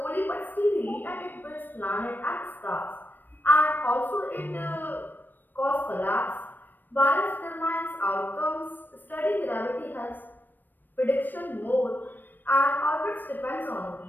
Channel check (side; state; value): right; late; 0.092 ms